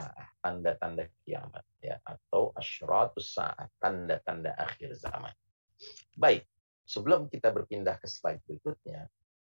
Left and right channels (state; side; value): inverted; both; correlation -1.00